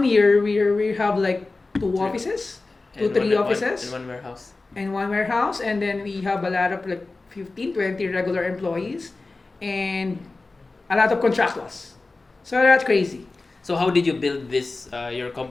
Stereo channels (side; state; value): right; quieter; 3.5 dB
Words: year, we have like 2 offices, And 3 one- offices, and one warehouse. and 1 warehouse, and then we have a lot of like 15, 20 regular employees, and a lot of contractors. So that's crazy. So how did you build this your